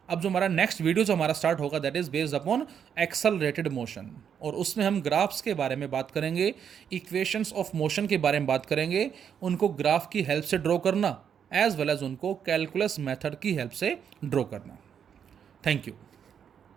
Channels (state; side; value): quieter; left; 8.0 dB